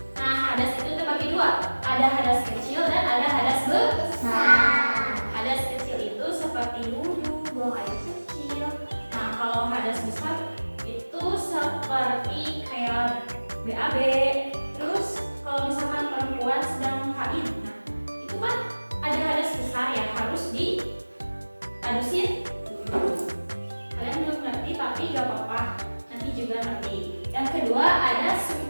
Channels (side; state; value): both; inverted; correlation -1.00